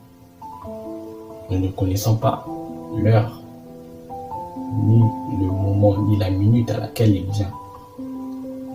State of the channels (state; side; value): identical; both; correlation 1.00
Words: nous ne connaissons pas l'heure, ni le moment, ni la minute à laquelle il vient.